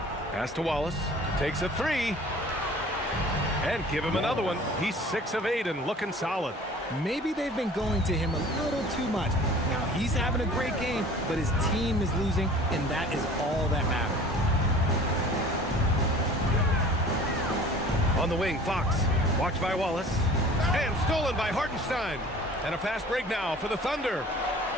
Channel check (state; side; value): normal; both; correlation 0.46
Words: Pass to Wallace. Takes a 3. And give him another one. He's 6 of 8 and looking solid. Maybe they've been going to him a little too much. Now, he's having a great game, but his team is losing, and that is all that matters. On the wing, Fox. Watched by Wallace. And stolen by Hartenstein. And a fast break now for the Thunder.